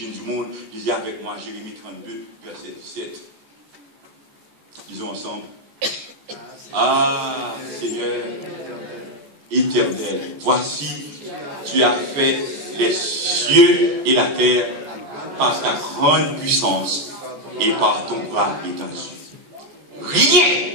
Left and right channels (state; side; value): late; left; 14 ms